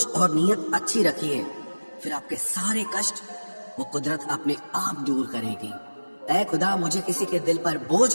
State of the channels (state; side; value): inverted; both; correlation -1.00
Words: اور نیت اچھی رکھیے، پھر آپ کے سارے کشٹ وہ قدرت اپنے آپ دور کرے گی. اے خدا مجھے کسی کے دل پر